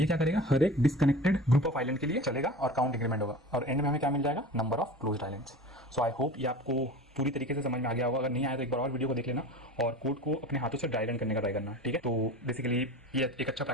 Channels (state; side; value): normal; both; correlation 0.35